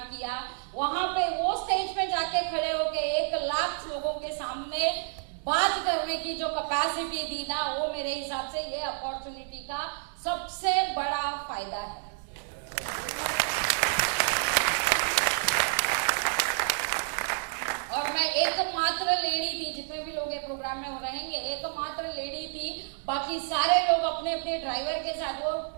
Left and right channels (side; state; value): left; silent; 58 dB below the other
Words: किया, वहां पे वो स्टेज पे जाके खड़े होके 1 लाख लोगों के सामने बात करने की जो कैपेसिटी दी ना, वो मेरे हिसाब से ये अपॉर्चुनिटी का सबसे बड़ा फायदा है। और मैं एकमात्र लेडी थी, जितने भी लोग ये प्रोग्राम में हो रहेंगे एकमात्र लेडी थी, बाकी सारे लोग अपने अपने ड्राइवर के साथ वो